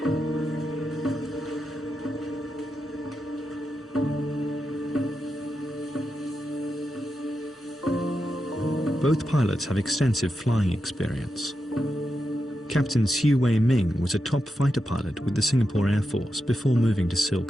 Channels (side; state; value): both; normal; correlation 0.88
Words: Both pilots have extensive flying experience. Captain Siu Wei Ming was a top fighter pilot with the Singapore Air Force before moving to